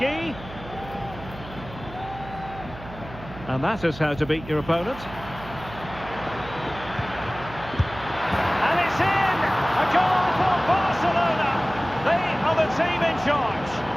And that is how to beat your opponent. And it's in! A goal for Barcelona! They are the team in charge.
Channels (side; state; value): right; noise; hum, 15 dB below the sound